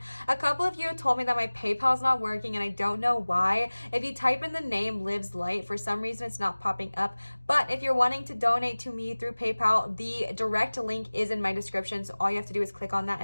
A couple of you told me that my PayPal is not working, and I don't know why. If you type in the name Lives Light, for some reason it's not popping up. But if you're wanting to donate to me through PayPal, the direct link is in my description. So all you have to do is click on that,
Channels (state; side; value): inverted; both; correlation -1.00